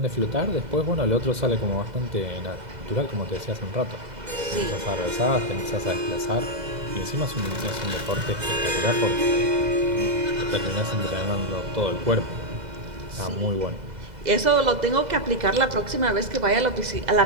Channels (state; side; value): late; left; 2.0 ms